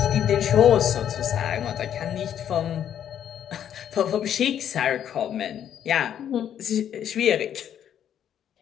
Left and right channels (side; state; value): right; quieter; 9.7 dB